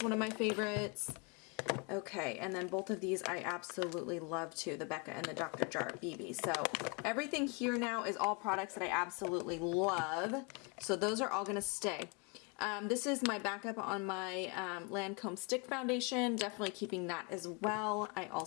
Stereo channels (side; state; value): right; quieter; 32.5 dB